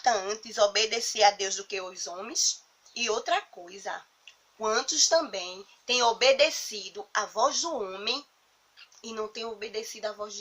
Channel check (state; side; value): identical; both; correlation 1.00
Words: antes obedecer a Deus do que aos homens? E outra coisa, quantos também têm obedecido à voz do homem e não têm obedecido à voz